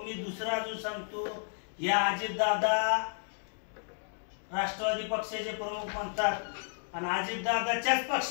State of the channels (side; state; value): right; silent; digital silence